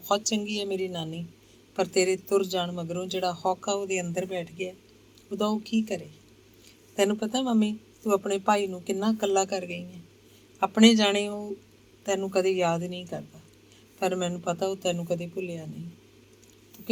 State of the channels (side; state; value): both; identical; correlation 1.00